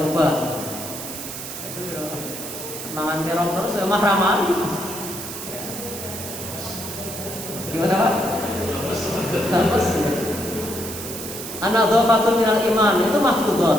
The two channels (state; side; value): noise; right; hiss, 9 dB below the sound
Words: obat. Itu ya, mangan terong terus ya mah ramaan. Gimana Pak? Lemes. An-nadhafatun minal iman, itu maftudat,